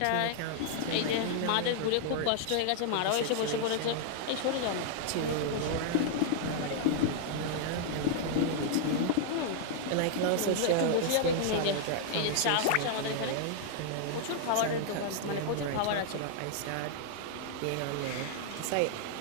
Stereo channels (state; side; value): different; both; correlation -0.01